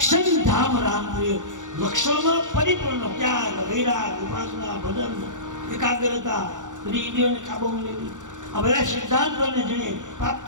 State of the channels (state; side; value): late; left; 0.86 ms